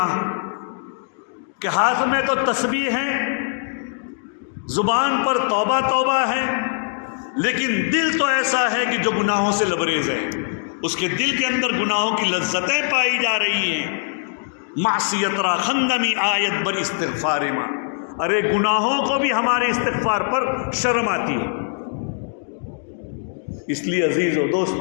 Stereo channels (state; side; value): silent; right; digital silence